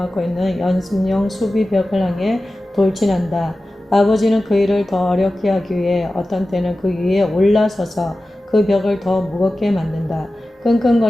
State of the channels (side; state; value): both; normal; correlation 0.95